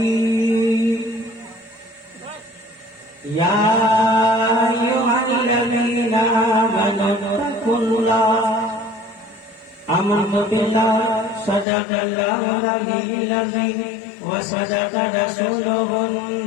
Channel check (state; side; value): drops out; right; at 11.7 s